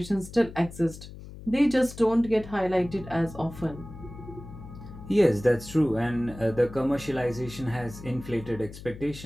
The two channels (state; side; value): noise; left; hum, 14 dB below the sound